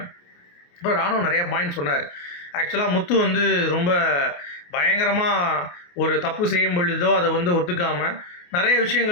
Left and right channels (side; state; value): right; late; 28 ms